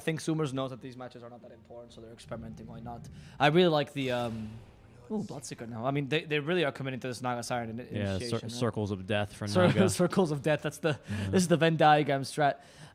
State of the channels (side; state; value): both; identical; correlation 1.00